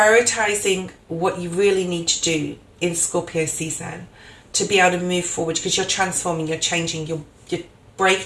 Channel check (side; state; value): both; identical; correlation 1.00